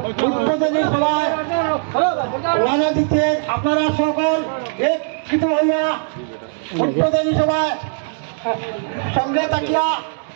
উদ্বোধনী সভায় রানা দিচ্ছেন আপনারা সকল একত্রিত হইয়া উদ্বোধনী সভায় সঙ্গে থাকিয়া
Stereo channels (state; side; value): silent; left; digital silence